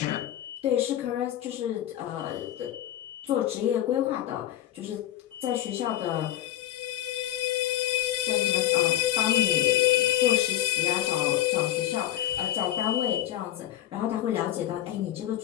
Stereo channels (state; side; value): quieter; right; 13.3 dB